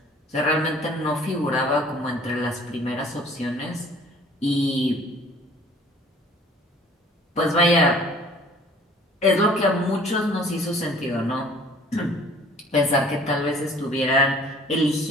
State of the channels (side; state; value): both; normal; correlation 0.52